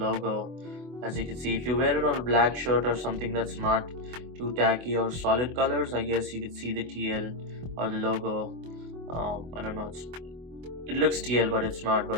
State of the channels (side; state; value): left; late; 24 ms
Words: as you can see, if you wear it on a black shirt or something that's not too tacky or solid colors, I guess you could see the TL or the logo. I don't know, it looks TL, but it's not.